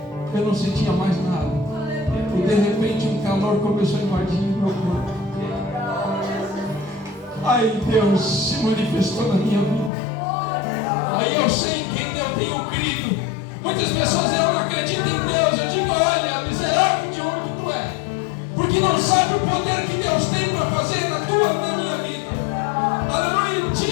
Eu não sentia mais nada. E de repente um calor começou a invadir o meu corpo. Ai, Deus se manifestou na minha vida. Aí eu sei em quem eu tenho crido. Muitas pessoas não acreditam em Deus. Eu digo: olha, miserável de onde tu é, porque não sabe o poder que Deus tem para fazer na minha vida. Aleluia.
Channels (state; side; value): drops out; right; at 9.9 s